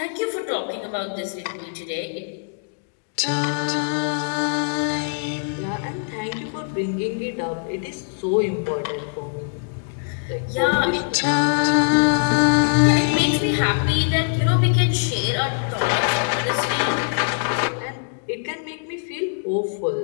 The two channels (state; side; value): silent; right; digital silence